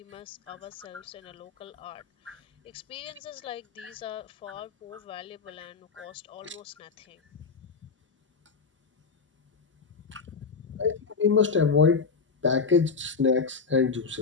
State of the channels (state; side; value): quieter; right; 5.1 dB